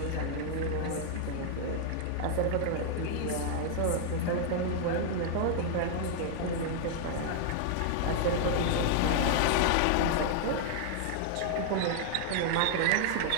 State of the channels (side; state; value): both; different; correlation -0.01